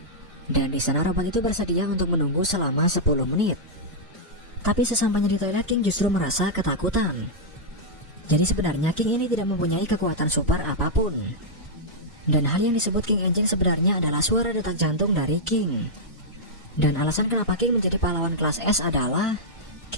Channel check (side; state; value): both; normal; correlation -0.07